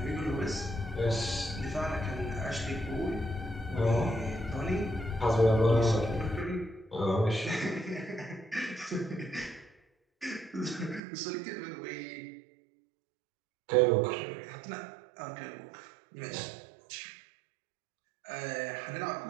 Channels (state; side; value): drops out; left; at 11.0 s